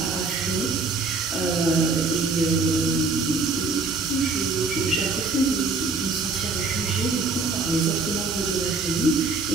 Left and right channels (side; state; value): left; quieter; 4.0 dB